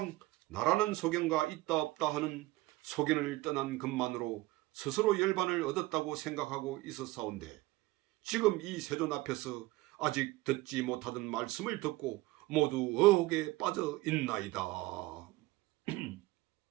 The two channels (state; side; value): quieter; left; 19.3 dB